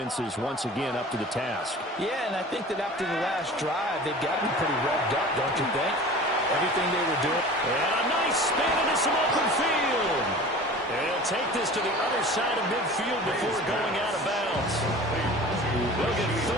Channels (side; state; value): both; normal; correlation 0.40